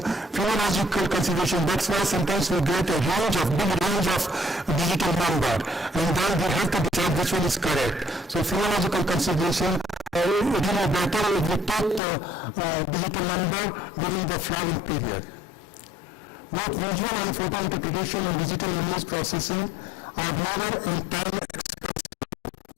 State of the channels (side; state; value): right; drops out; at 12.0 s